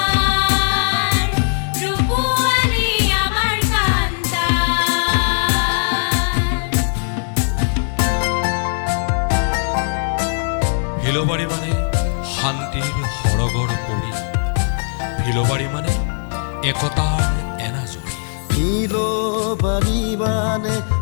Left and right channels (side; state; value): right; silent; 67 dB below the other